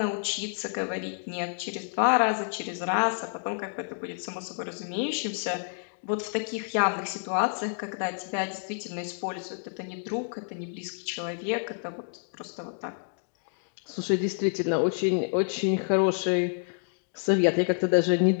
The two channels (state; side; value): silent; right; digital silence